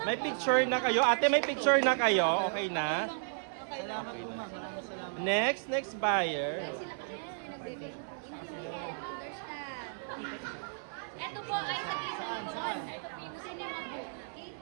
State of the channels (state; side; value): silent; left; 55 dB below the other